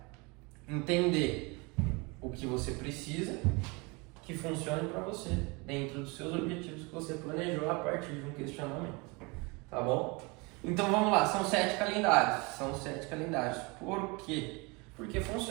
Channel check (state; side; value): quieter; left; 27.8 dB